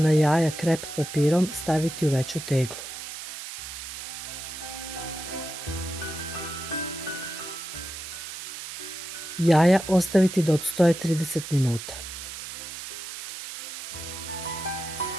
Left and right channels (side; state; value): right; noise; hiss, 9 dB below the sound